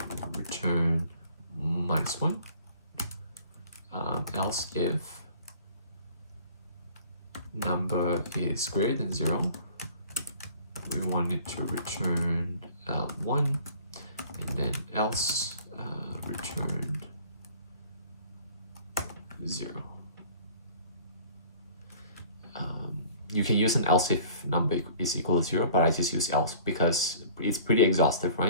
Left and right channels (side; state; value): both; inverted; correlation -0.50